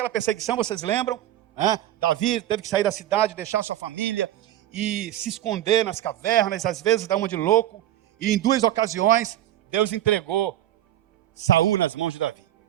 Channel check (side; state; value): left; quieter; 13.0 dB